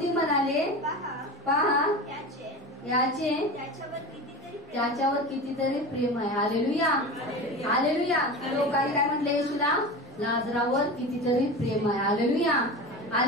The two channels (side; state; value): both; normal; correlation 0.29